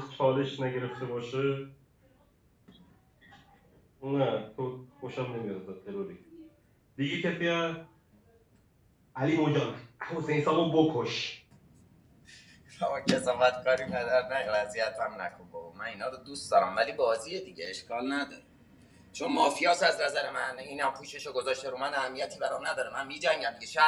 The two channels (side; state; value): both; identical; correlation 1.00